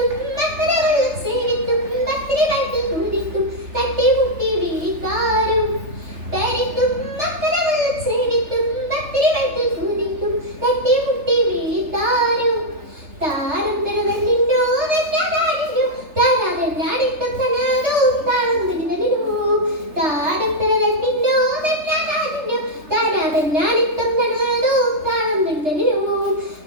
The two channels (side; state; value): left; late; 3.3 ms